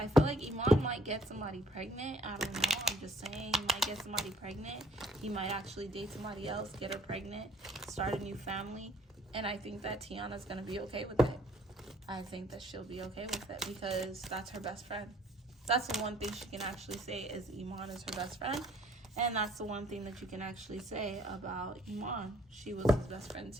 feel like Iman might get somebody pregnant. I don't know. I'm just saying, he might get somebody pregnant. He might actually date somebody else, get her pregnant, start a new family. And I think that Tiana's gonna be okay with it. I think that she'll be okay with it because that's her best friend. That's the one thing she can actually say is Iman is her best friend. And that's the one thing that you can actually say about Iman. She was his best friend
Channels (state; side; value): normal; both; correlation 0.61